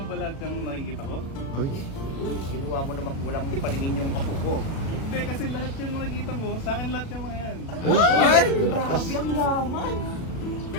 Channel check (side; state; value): right; late; 36 ms